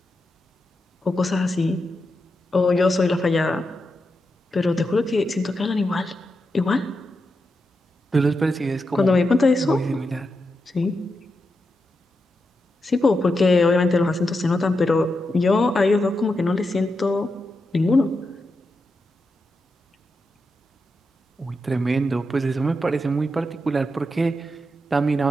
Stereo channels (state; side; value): normal; both; correlation 0.87